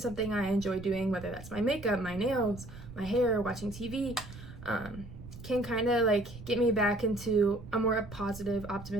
I enjoy doing, whether that's my makeup, my nails, my hair, watching TV, can kind of like get me back into a more positive,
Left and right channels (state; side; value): noise; right; rumble, 14 dB below the sound